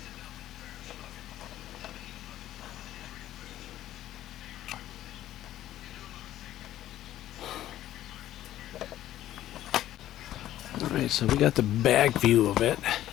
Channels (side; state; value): right; quieter; 13.2 dB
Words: Alright, so we got the back view of it.